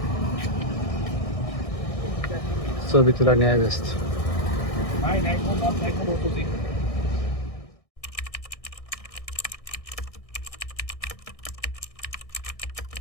ছবি তোলা নিয়ে ব্যস্ত।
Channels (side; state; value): right; late; 1.6 ms